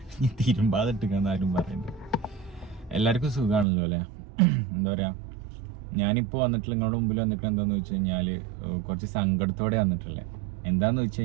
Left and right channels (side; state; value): left; drops out; at 3.7 s